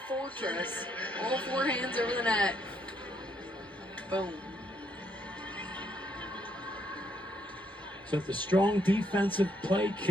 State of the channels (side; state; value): both; normal; correlation 0.73